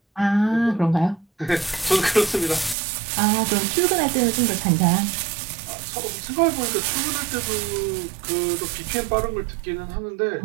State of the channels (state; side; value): drops out; left; at 2.8 s